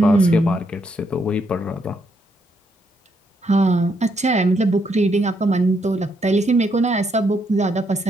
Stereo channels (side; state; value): both; normal; correlation 0.76